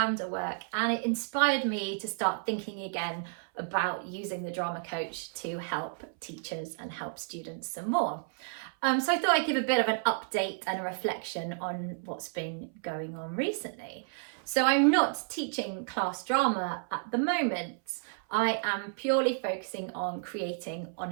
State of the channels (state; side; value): silent; left; 57 dB below the other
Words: work, and it inspired me to start thinking again about using the drama coach to help teachers and help students some more. So I thought I'd give a bit of an update and a reflection on what's been going on recently. So I'm not teaching class drama at the moment. I am purely focusing on creating